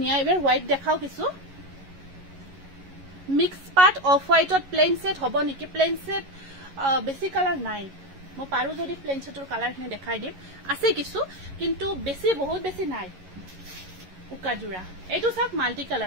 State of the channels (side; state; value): left; late; 11 ms